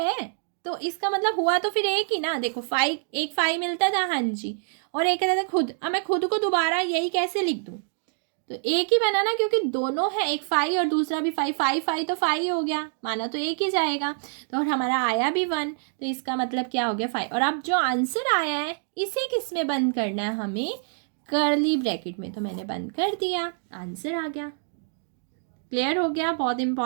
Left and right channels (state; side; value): silent; left; 61 dB below the other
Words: तो इसका मतलब हुआ तो फिर एक ही ना। देखो 5, एक 5 मिलता था, हाँ जी, और एक कहता था खुद। अब मैं खुद को दोबारा यही कैसे लिख दूँ? तो एक ही बना ना, क्योंकि दोनों है, एक 5 और दूसरा भी 5, 5 5 तो 5 हो गया, माना तो एक ही जाएगा। तो और हमारा आया भी 1, तो इसका मतलब क्या हो गया? 5। और अब जो आंसर आया है इसे किस में बंद करना है? हमें कर्ली ब्रैकेट में। तो मैंने बंद कर दिया, आंसर आ गया। क्लियर हो गया? बहुत